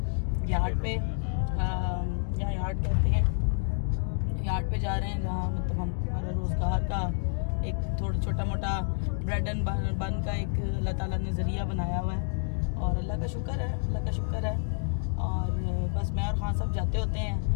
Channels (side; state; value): right; silent; 59 dB below the other